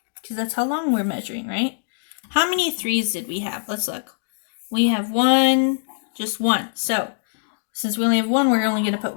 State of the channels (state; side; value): silent; right; digital silence